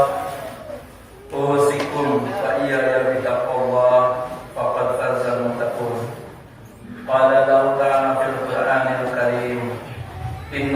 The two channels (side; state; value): both; identical; correlation 1.00